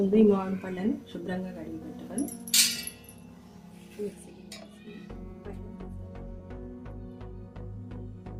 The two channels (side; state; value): both; identical; correlation 1.00